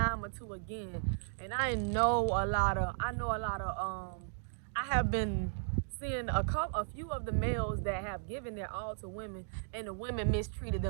or two again. And I know a lot of, I have been seeing a few of the males that have given their all to women, and the women mistreated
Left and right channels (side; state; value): left; silent; digital silence